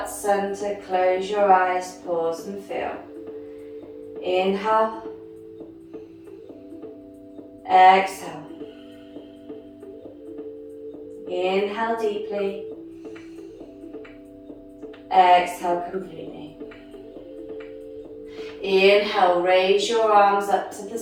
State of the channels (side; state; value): both; identical; correlation 1.00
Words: center. Close your eyes, pause and feel. Inhale. Exhale. Inhale deeply. Exhale completely. Inhale, raise your arms up to the